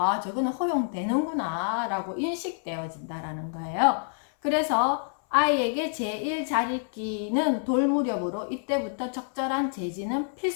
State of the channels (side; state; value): right; silent; 60 dB below the other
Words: 저거는 허용되는구나 라고 인식되어진다라는 거예요. 그래서 아이에게 제1자립기는 돌무렵으로 이때부터 적절한 제지는